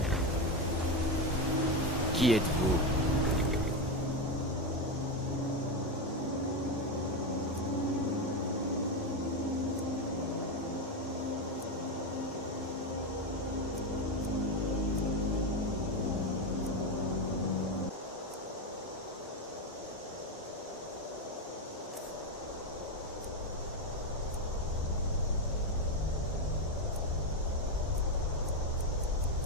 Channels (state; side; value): normal; both; correlation 0.11